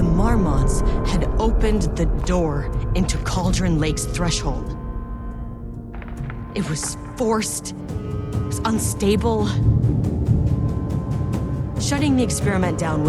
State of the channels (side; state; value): both; identical; correlation 1.00